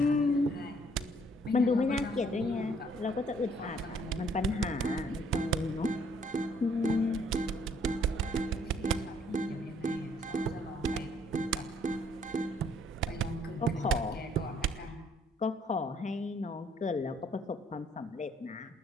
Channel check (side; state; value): both; normal; correlation 0.64